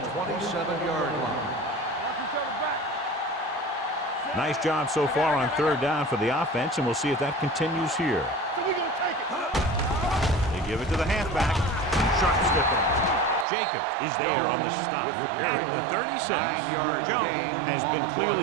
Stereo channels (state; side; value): drops out; left; at 13.5 s